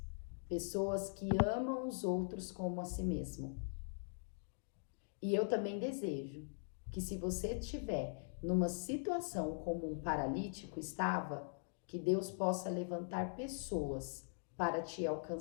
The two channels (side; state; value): right; silent; digital silence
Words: pessoas que amam os outros como a si mesmo. E eu também desejo que, se você estiver numa situação como um paralítico estava, que Deus possa levantar pessoas para te